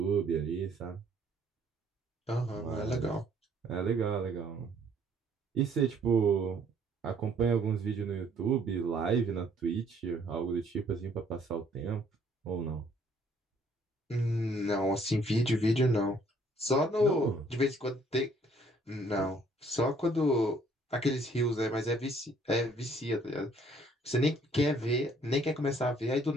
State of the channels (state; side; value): normal; both; correlation 0.62